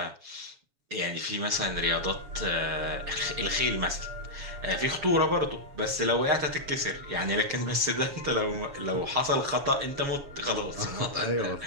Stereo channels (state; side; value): late; left; 7.2 ms